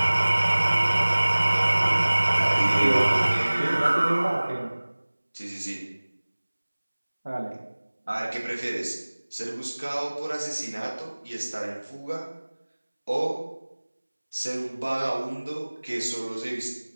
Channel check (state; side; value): inverted; both; correlation -1.00